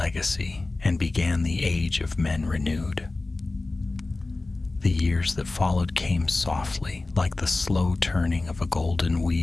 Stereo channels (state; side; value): quieter; right; 3.2 dB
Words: and began the age of men renewed. The years that followed came softly, like the slow turning of a golden